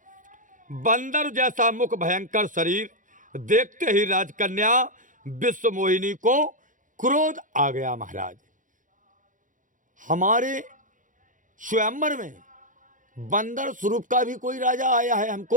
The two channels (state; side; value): late; left; 0.38 ms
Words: बंदर जैसा मुख, भयंकर शरीर देखते ही राजकन्या विश्व मोहिनी को क्रोध आ गया महाराज। हमारे स्वयंवर में बंदर स्वरूप का भी कोई राजा आया है